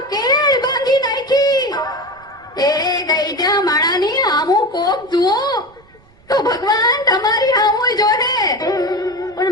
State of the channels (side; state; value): right; noise; rumble, 29 dB below the sound